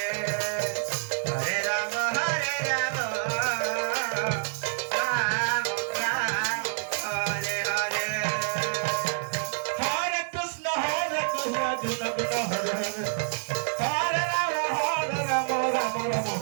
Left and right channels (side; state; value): left; silent; digital silence